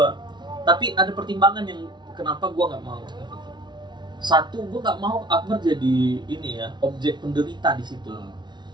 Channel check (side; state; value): left; late; 0.21 ms